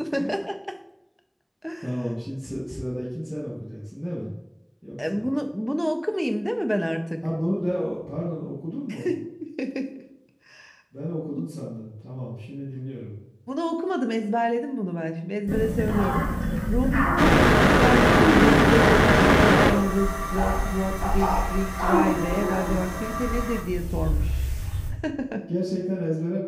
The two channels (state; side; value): identical; both; correlation 1.00